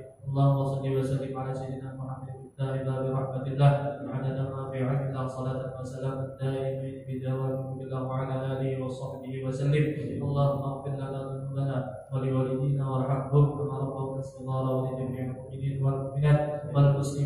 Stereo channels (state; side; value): identical; both; correlation 1.00